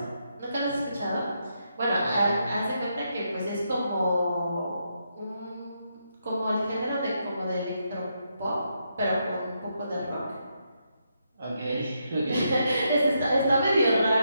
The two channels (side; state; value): both; inverted; correlation -0.81